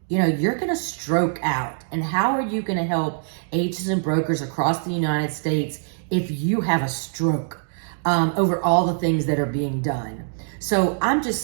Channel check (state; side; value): silent; left; digital silence